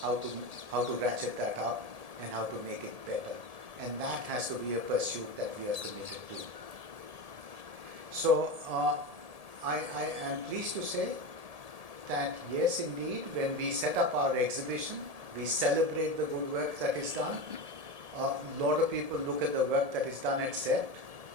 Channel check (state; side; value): late; left; 1.8 ms